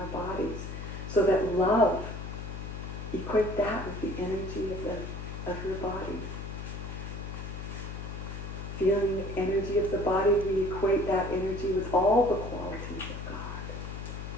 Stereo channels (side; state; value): left; noise; hum, 7 dB below the sound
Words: bodies. So that love, equate that with the energy of your body. Feeling the energy of the body, we equate that energy with all the qualities of God.